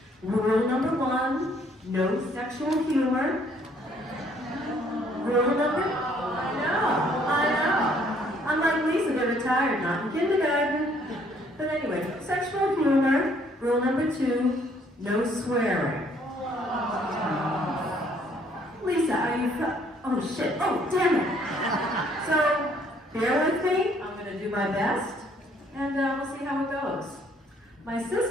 Rule number 1, no sexual humor. Rule number, I know. Unlike Lisa, they're retired, not in kindergarten. But anyway, sexual humor. Rule number 2, no swearing. Lisa, are you, oh shit, oh damn it. So, bear with me, I'm gonna do my best, and we'll see how it goes. My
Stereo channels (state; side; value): normal; both; correlation 0.63